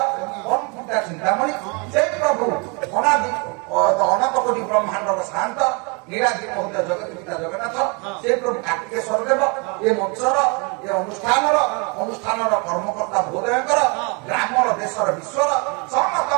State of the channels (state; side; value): quieter; left; 32.2 dB